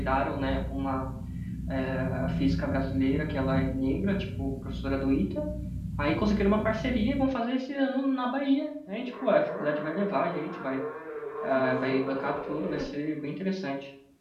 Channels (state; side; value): identical; both; correlation 1.00